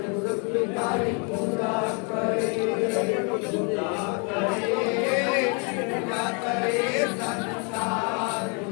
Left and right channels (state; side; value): quieter; right; 35.8 dB